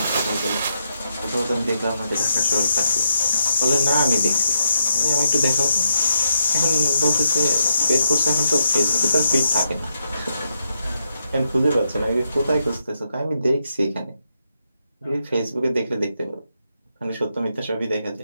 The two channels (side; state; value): both; inverted; correlation -0.80